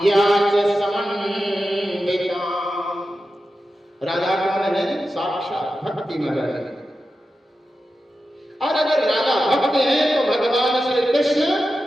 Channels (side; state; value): both; normal; correlation 0.91